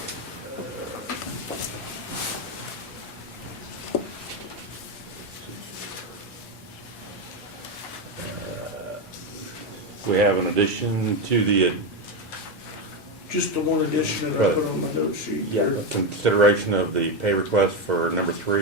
We have an addition to the Just the one addition that I put on my note sheet here. consideration of the pay request for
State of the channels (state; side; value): normal; both; correlation 0.10